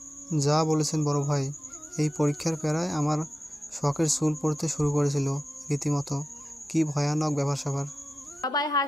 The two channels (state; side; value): normal; both; correlation 0.93